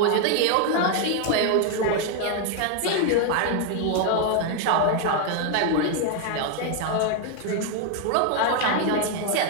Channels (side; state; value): both; different; correlation 0.00